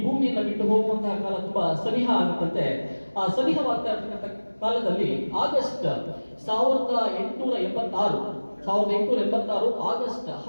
ಭೂಮಿಯನ್ನು ಬಿಟ್ಟು ಹೋಗುವಂತಹ ಕಾಲ ತುಂಬಾ ಸನಿಹ ಆಗುತ್ತಂತೆ. ಆ ಸನಿಹವಾಗ್ತಾ ಇರ್ತಕ್ಕಂಥ ಕಾಲದಲ್ಲಿ ಆಗಸ್ಟ್ 1886 ಆಗಸ್ಟ್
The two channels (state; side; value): inverted; both; correlation -1.00